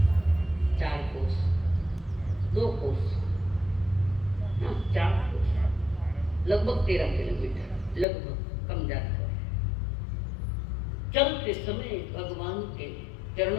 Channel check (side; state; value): right; drops out; at 8.1 s